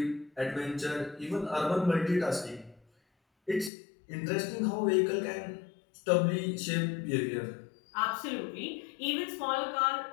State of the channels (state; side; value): drops out; right; at 3.7 s